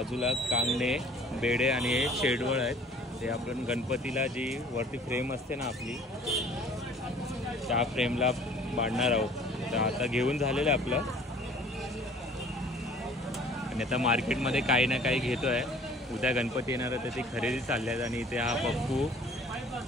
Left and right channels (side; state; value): both; normal; correlation 0.51